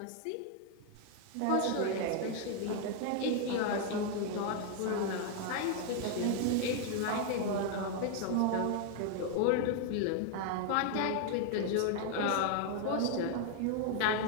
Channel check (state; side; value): different; both; correlation 0.00